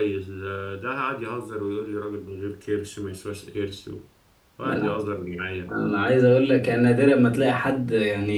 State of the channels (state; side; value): identical; both; correlation 1.00